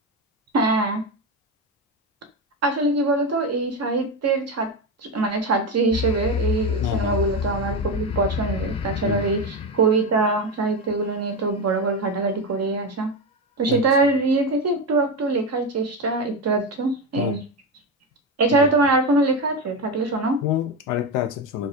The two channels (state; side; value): normal; both; correlation 0.16